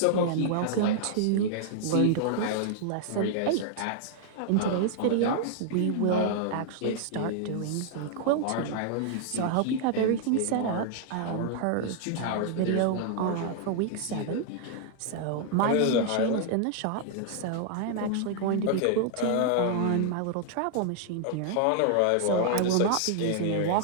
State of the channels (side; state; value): both; different; correlation -0.01